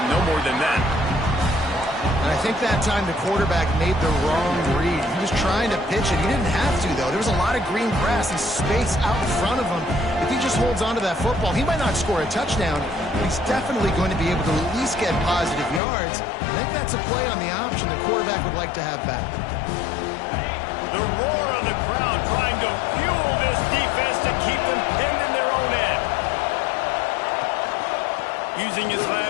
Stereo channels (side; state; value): right; drops out; at 15.8 s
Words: no more than that. And I think that time the quarterback made the wrong read. He was trying to pitch it. He didn't have to, though. There was a lot of green grass and space out in front of him. If he just holds on to that football, he might not score a touchdown, but he's definitely going to be able to at least get positive yards. I think that's a play on the option the quarterback would like to have back. The roar of the crowd trying to fuel this defense to keep them pinned in their own end. Using his